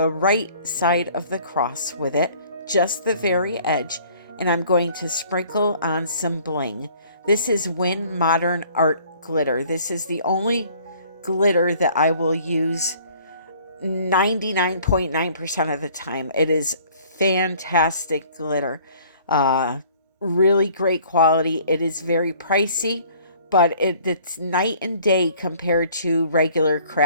right side of the cross with it, just the very edge, and I'm going to sprinkle on some bling. This is Win Modern Art glitter. This is the only glitter that I will use 99.9% of the time. It is fantastic glitter. Really great quality. It is very pricey, but it's night and day compared to regular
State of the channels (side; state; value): both; inverted; correlation -0.55